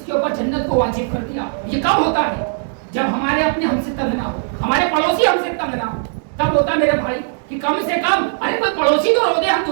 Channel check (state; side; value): silent; left; digital silence